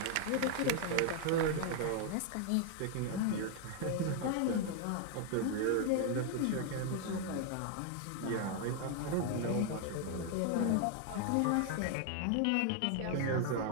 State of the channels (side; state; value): both; different; correlation 0.00